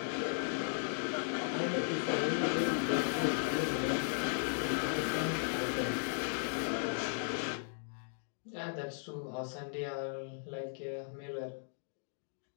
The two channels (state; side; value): silent; right; digital silence